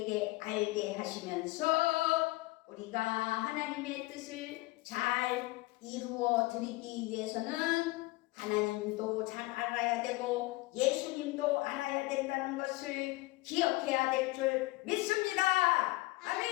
알게 하시면서 우리가 하나님의 뜻을 잘 이루어 드리기 위해서는 하나님도 잘 알아야 되고 예수님도 알아야 된다는 것을 기억해야 될 줄 믿습니다.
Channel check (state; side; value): quieter; right; 21.0 dB